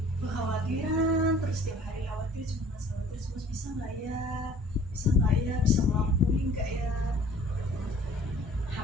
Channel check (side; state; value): both; normal; correlation 0.51